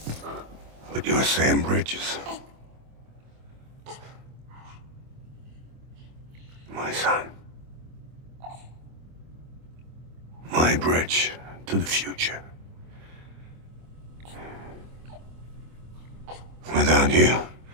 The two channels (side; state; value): left; late; 25 ms